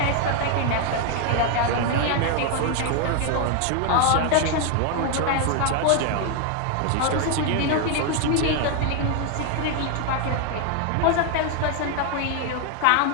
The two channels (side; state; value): both; different; correlation 0.01